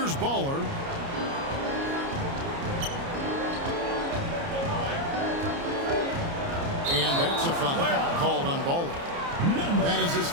Baller. And that's a foul called on Baller. That is his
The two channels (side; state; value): left; late; 29 ms